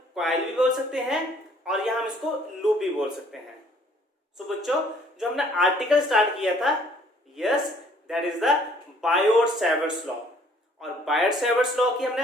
coil भी बोल सकते हैं और यहां हम इसको लूप भी बोल सकते हैं। सो बच्चों जो हमने आर्टिकल स्टार्ट किया था yes that is the Biot Savart law और बायोट-सैवर्ट लॉ की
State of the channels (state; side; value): normal; both; correlation 0.60